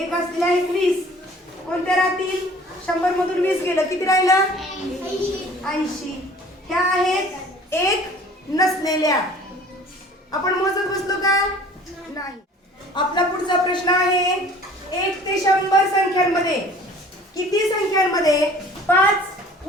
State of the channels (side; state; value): both; normal; correlation 0.49